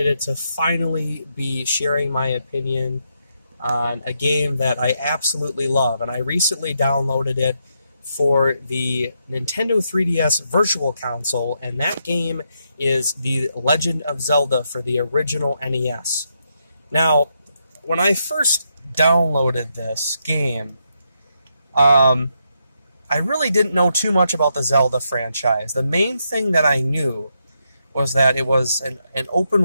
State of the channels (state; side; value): inverted; both; correlation -0.80